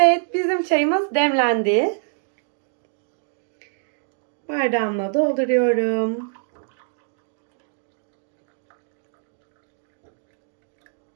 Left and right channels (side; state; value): left; silent; digital silence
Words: bizim çayımız demlendi. Bardağıma dolduruyorum.